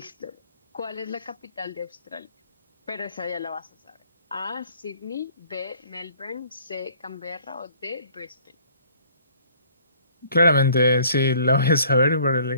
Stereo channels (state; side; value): inverted; both; correlation -0.56